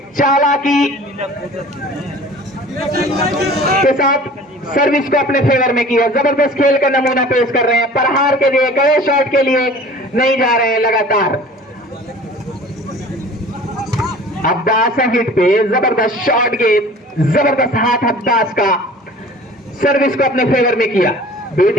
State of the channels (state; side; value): normal; both; correlation 0.44